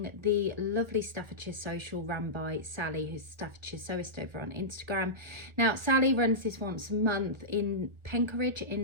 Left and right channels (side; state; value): left; late; 1.5 ms